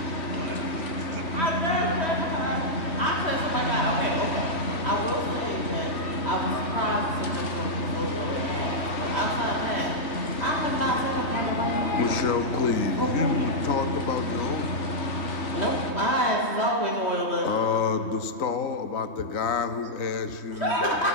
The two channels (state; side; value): late; right; 3.2 ms